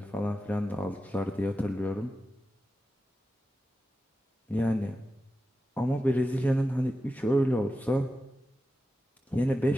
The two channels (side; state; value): both; normal; correlation 0.92